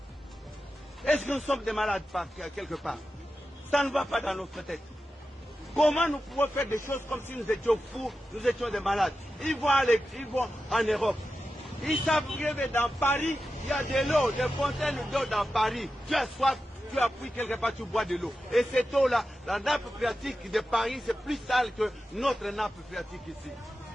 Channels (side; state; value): both; normal; correlation 0.91